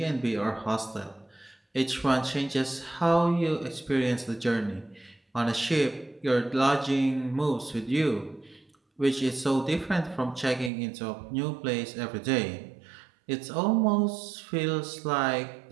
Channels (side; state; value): left; drops out; at 10.7 s